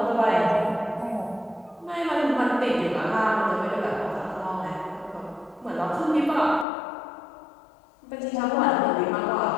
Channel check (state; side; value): drops out; right; at 6.7 s